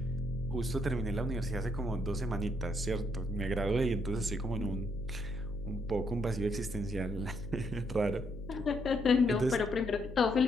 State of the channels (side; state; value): left; noise; hum, 14 dB below the sound